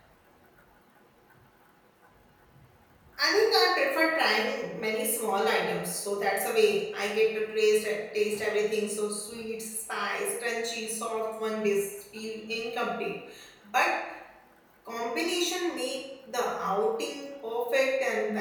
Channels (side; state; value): both; identical; correlation 1.00